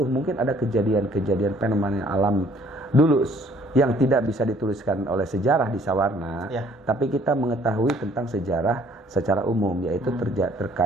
mungkin ada kejadian-kejadian fenomena alam dulu yang tidak bisa dituliskan oleh sejarah di Sawarna, tapi kita mengetahui tentang sejarah secara umum, yaitu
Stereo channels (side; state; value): both; normal; correlation 0.59